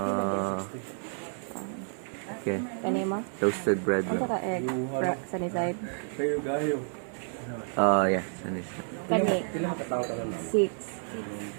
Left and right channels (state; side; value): silent; left; 58 dB below the other